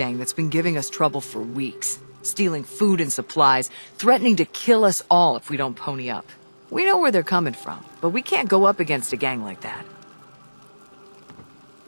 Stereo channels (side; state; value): both; inverted; correlation -1.00